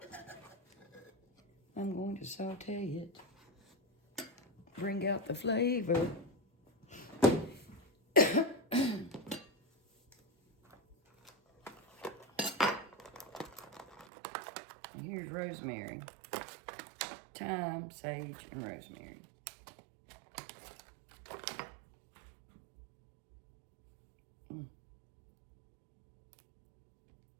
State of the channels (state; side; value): drops out; left; at 14.1 s